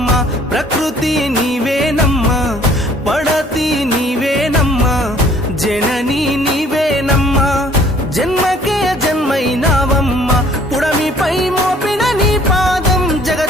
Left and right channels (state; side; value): normal; both; correlation 0.58